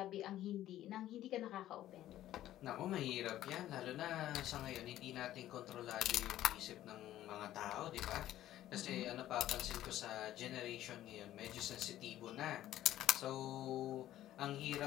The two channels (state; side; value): quieter; right; 13.4 dB